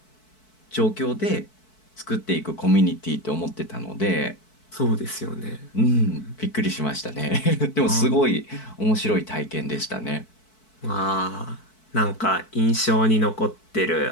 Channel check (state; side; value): late; right; 4.6 ms